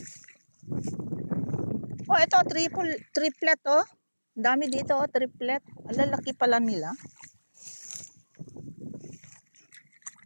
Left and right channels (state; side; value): inverted; both; correlation -1.00